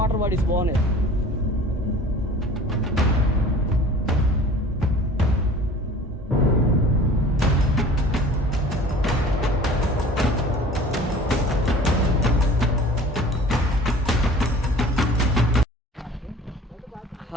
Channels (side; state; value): both; normal; correlation 0.45